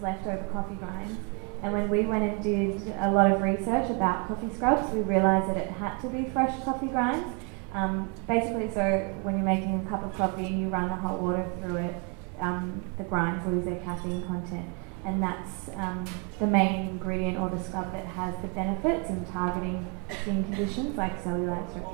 leftover coffee grinds. And when we went and did a lot of research about coffee scrubs, we realised that it had to be fresh coffee grinds. Basically, so when you're making a cup of coffee and you run the hot water through it, the grinds lose their caffeine content. And that's the main ingredient or the scrub that has the benefits in targeting skin conditions like cellulite,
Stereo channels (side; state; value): left; quieter; 35.8 dB